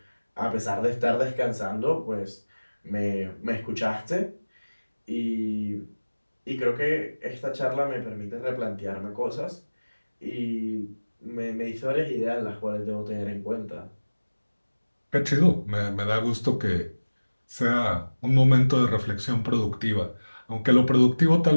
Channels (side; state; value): both; inverted; correlation -1.00